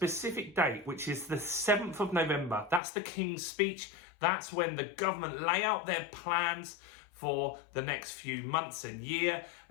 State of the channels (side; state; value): right; drops out; at 2.8 s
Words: date, which is the 7th of November. That's the King's speech. That's when the government lay out their plans for the next few months and year,